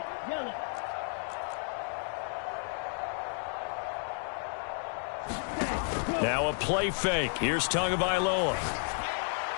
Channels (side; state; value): right; silent; 56 dB below the other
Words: yellow. Now a play fake. Here's Tagovailoa.